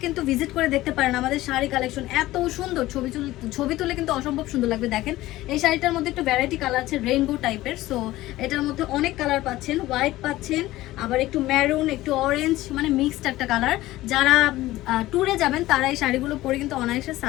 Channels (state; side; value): quieter; right; 16.8 dB